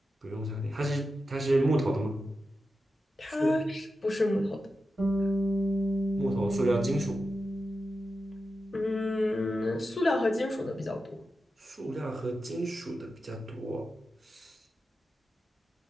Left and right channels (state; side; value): normal; both; correlation 0.90